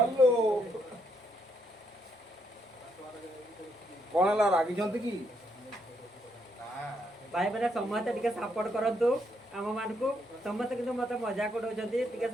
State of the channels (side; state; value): both; normal; correlation 0.75